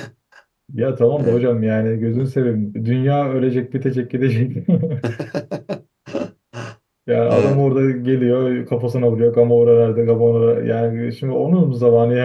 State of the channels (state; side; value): identical; both; correlation 1.00